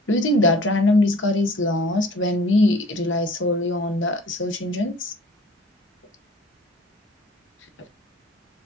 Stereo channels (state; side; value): normal; both; correlation 0.49